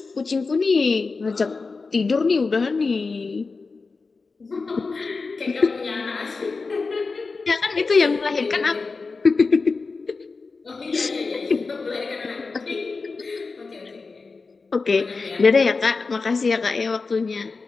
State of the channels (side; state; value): right; quieter; 4.2 dB